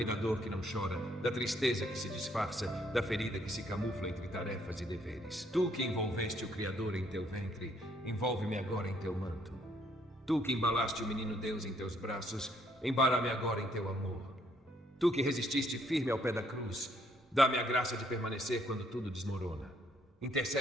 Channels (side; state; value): both; normal; correlation 0.69